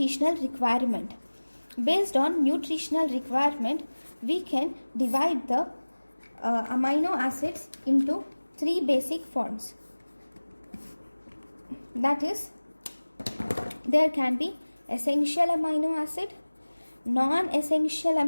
requirement. Based on nutritional requirement, we can divide the amino acids into three basic forms. That is, there can be essential amino acid, non-essential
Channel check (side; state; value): both; inverted; correlation -1.00